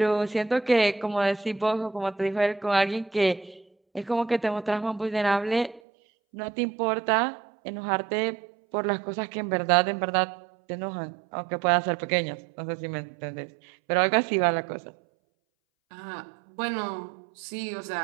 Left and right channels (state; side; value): drops out; left; at 5.8 s